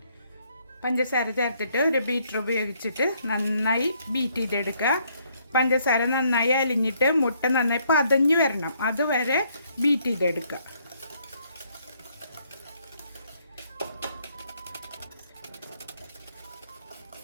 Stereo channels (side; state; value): both; inverted; correlation -0.69